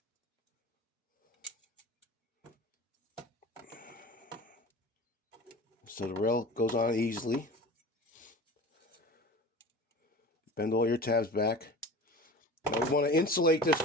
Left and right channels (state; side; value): normal; both; correlation 0.36